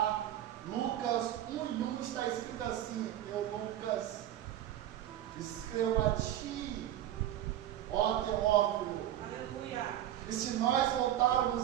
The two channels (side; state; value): left; quieter; 12.2 dB